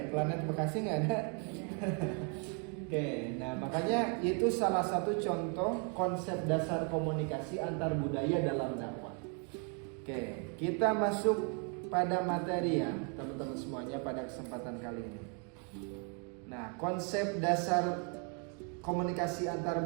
planet Bekasi nggak ada. Oke, nah makanya itu salah satu contoh konsep dasar komunikasi antar budaya dalam dakwah. Oke, kita masuk pada materi ya teman-teman semuanya pada kesempatan kali ini. Nah, konsep dasar komunikasi antar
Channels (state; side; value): quieter; left; 38.3 dB